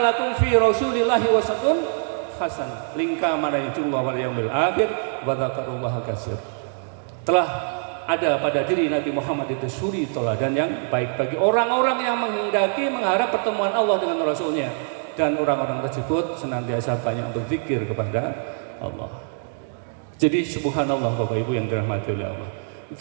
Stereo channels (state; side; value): silent; left; 61 dB below the other